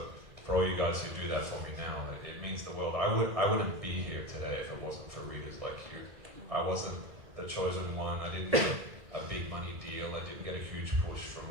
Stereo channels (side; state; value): left; late; 2.0 ms